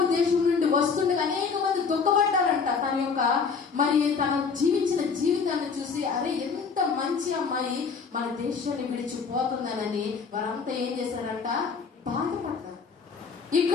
దేశం నుండి వస్తుండగా అనేక మంది దుఃఖపడ్డారంట. తన జీవించిన జీవితాన్ని చూసి, అరే ఎంత మంచి అమ్మాయి మన దేశాన్ని విడిచిపోతుందనని వారంతా ఏం చేశారంట? బాధపడ్డారు.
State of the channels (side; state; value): right; quieter; 5.5 dB